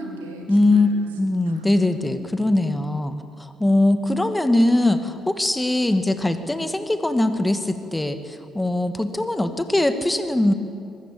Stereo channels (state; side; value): normal; both; correlation 0.94